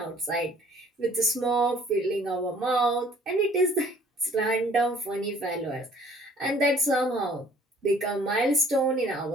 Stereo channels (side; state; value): both; normal; correlation 0.56